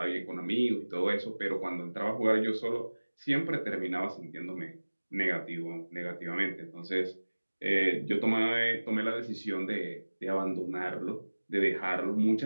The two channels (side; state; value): both; inverted; correlation -1.00